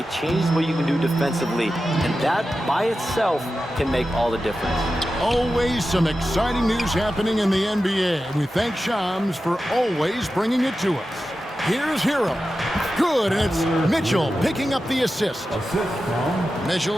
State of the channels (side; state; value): both; normal; correlation 0.92